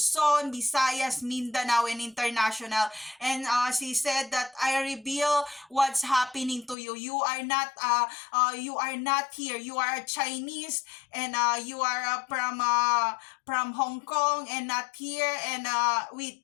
Visayas, Mindanao, and international. And she said that I reveal what's happening to you. You are not here. You are Chinese, and you are from Hong Kong and not here. And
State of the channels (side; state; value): right; drops out; at 6.8 s